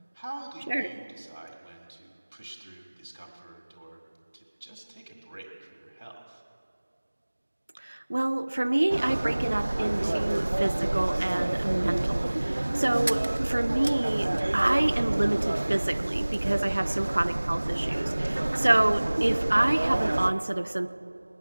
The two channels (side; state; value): both; inverted; correlation -1.00